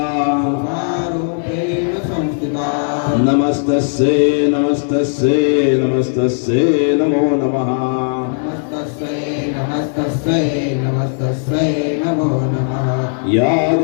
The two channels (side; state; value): right; silent; 68 dB below the other